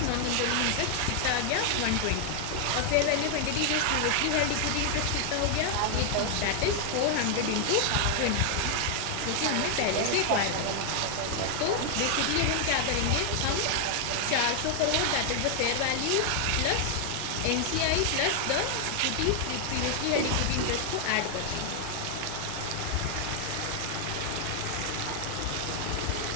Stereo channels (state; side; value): different; both; correlation 0.00